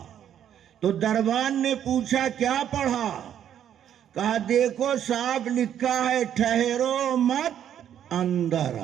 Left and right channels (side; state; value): left; quieter; 9.9 dB